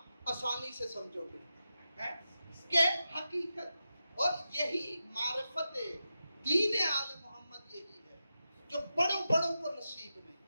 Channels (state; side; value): inverted; both; correlation -0.90